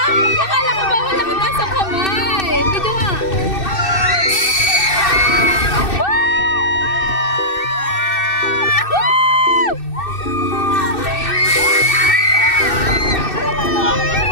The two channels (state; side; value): late; right; 2.6 ms